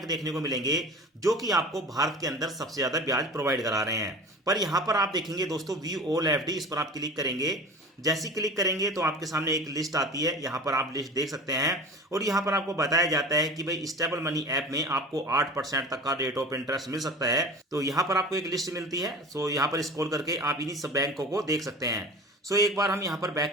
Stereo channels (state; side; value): normal; both; correlation 0.37